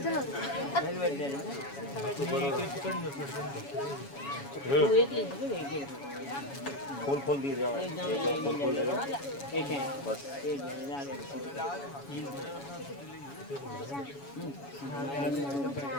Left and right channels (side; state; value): right; late; 7.1 ms